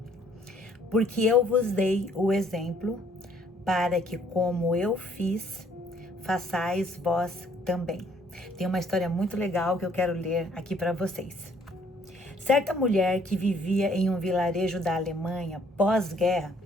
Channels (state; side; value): normal; both; correlation 0.62